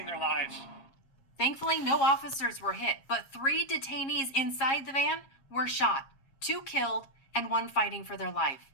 their lives. Thankfully, no officers were hit, but 3 detainees inside the van were shot, 2 killed, and 1 fighting for their life.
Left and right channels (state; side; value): late; right; 7.4 ms